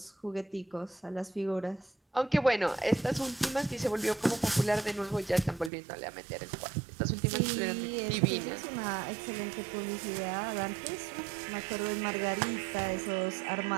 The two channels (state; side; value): drops out; left; at 5.7 s